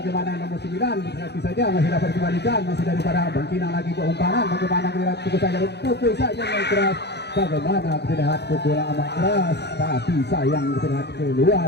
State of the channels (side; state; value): right; late; 0.49 ms